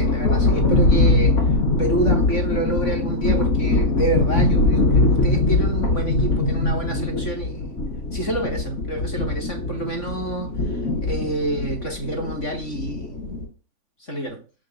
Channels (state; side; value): late; right; 3.5 ms